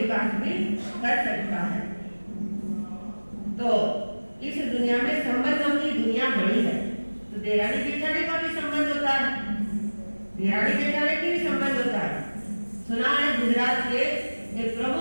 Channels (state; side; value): inverted; both; correlation -1.00